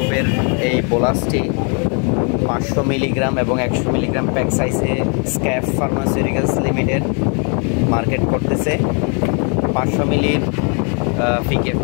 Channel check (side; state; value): right; quieter; 38.5 dB